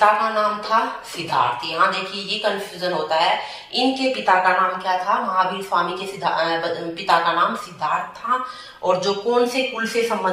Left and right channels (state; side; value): identical; both; correlation 1.00